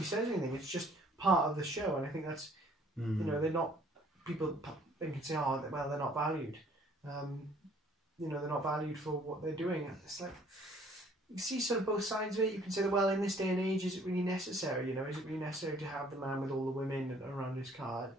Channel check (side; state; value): both; normal; correlation 0.59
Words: says anything. It's just part of the show, and I think that's, you know, they're not. People think and say, oh, well, they're not valued. You know, they're not valued for what they're doing. And it's like, you see sort of both sides of it. You can say that, well, in this day and age, is it really necessary? You know, is it really necessary to have the man with all the women around his car?